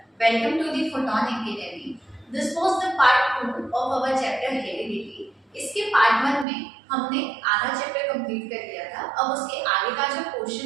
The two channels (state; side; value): drops out; left; at 6.5 s